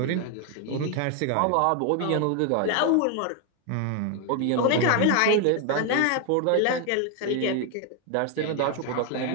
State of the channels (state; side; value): different; both; correlation 0.01